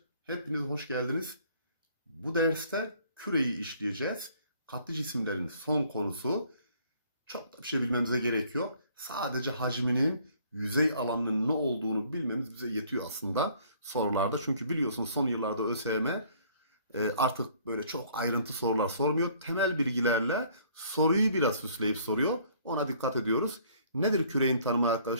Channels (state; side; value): inverted; both; correlation -0.59